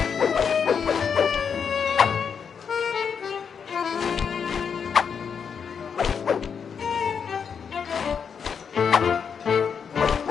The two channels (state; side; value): quieter; right; 6.7 dB